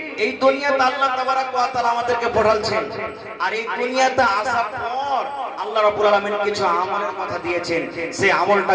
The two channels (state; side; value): identical; both; correlation 1.00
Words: এই দুনিয়াতে আল্লাহ তাবারাক ওয়া তাআলা আমাদেরকে পাঠালছেন, আর এই দুনিয়াতে আসার পর আল্লাহ রাব্বুল আলামিন কিছু আমলের কথা দিয়েছেন, সেই আমলটা